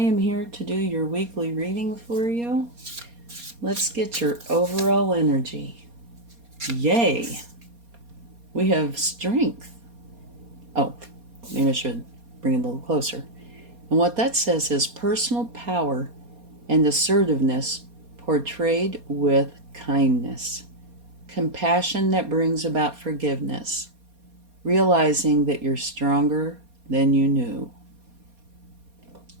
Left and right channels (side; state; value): left; late; 4.2 ms